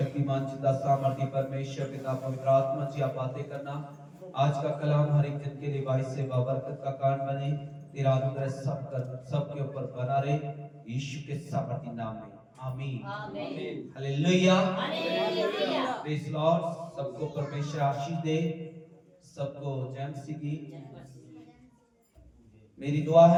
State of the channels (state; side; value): identical; both; correlation 1.00